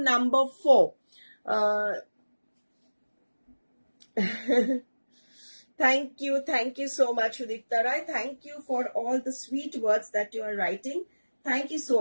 number 4. Thank you so much Udipta Rai, thank you for all the sweet words that you are writing. Thank you so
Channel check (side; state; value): both; inverted; correlation -1.00